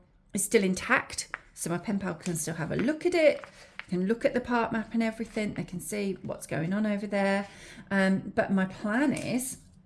still intact, so my pen pal can still have a look at it, can look at the park map and everything. They can see what's going on over there. But my plan is,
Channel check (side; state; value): both; identical; correlation 1.00